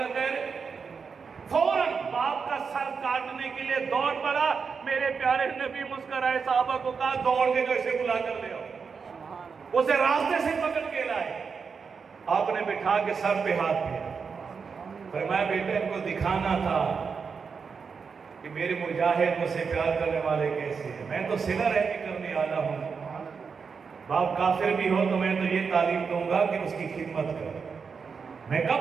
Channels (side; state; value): left; quieter; 5.6 dB